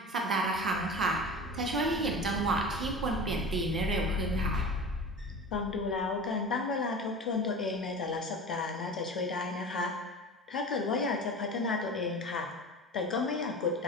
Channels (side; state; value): both; normal; correlation 0.34